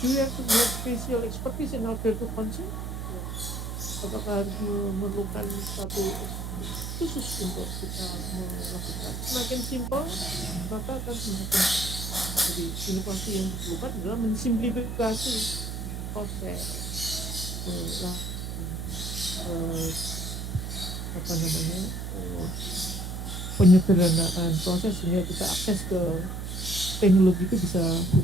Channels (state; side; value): noise; right; hum, 5 dB below the sound